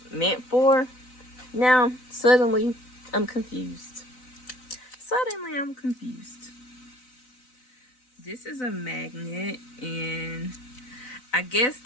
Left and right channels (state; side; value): late; right; 4.0 ms